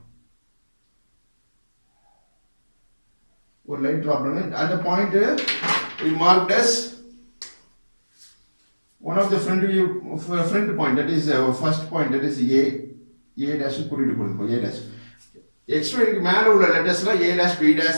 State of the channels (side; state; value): both; inverted; correlation -1.00